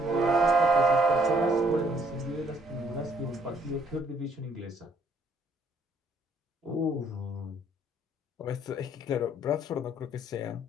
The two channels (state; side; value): normal; both; correlation 0.65